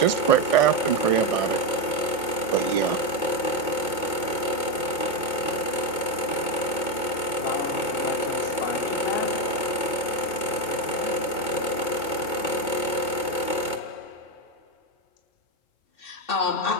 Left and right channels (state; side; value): late; right; 2.2 ms